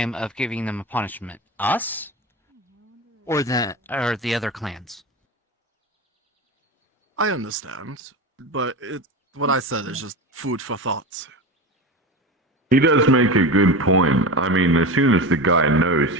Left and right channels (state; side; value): normal; both; correlation 0.26